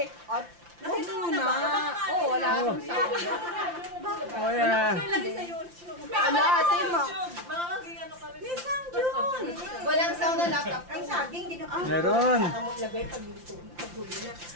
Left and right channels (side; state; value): left; late; 5.8 ms